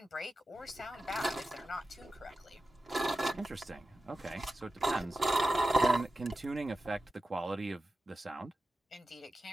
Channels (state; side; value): normal; both; correlation 0.93